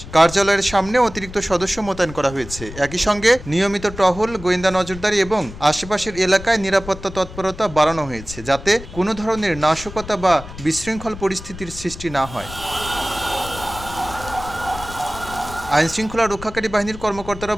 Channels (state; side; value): noise; left; rumble, 14 dB below the sound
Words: কার্যালয়ের সামনে অতিরিক্ত সদস্য মোতায়েন করা হয়েছে। একই সঙ্গে নিয়মিত টহল, গোয়েন্দা নজরদারি এবং আশেপাশের এলাকায় নিরাপত্তা তৎপরতা বাড়ানো হয়েছে, যাতে কোনো ধরনের নাশকতা বা বিশৃঙ্খল পরিস্থিতির সৃষ্টি না হয়। আইনশৃঙ্খলা রক্ষাকারী বাহিনীর কর্মকর্তারা